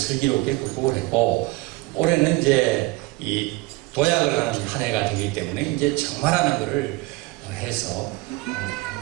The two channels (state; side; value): quieter; left; 21.4 dB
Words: 극복을 했고, 올해는 이제 이 도약을 하는 한 해가 되기 때문에 이제 정말하는 거를 해서